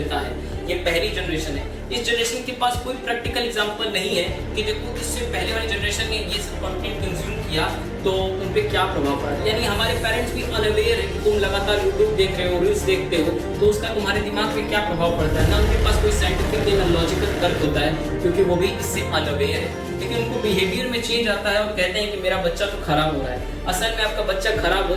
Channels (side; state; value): both; identical; correlation 1.00